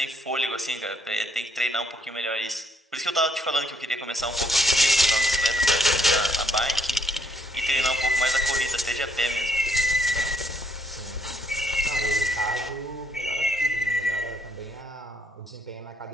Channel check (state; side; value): normal; both; correlation 0.70